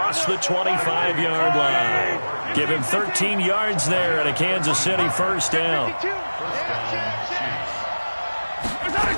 the 25-yard line. Give him 13 yards there and a Kansas City 1st down.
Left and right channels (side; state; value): both; inverted; correlation -1.00